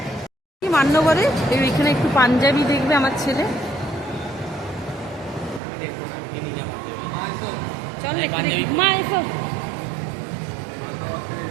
মান্যবরে এখানে একটু পাঞ্জাবি দেখবে আমার ছেলে। চল মা এসো।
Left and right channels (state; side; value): drops out; left; at 5.6 s